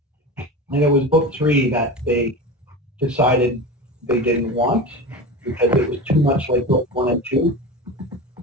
And it was book 3 that they decided they didn't want because it was too much like book 1 and 2.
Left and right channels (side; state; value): both; normal; correlation 0.27